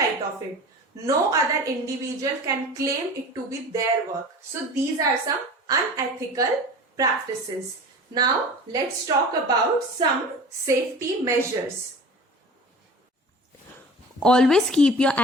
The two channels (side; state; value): both; normal; correlation 0.38